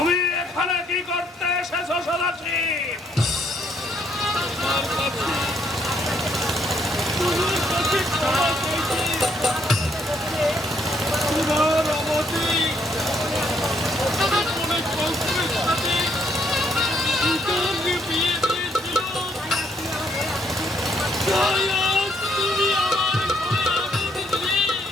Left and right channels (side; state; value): both; normal; correlation 0.70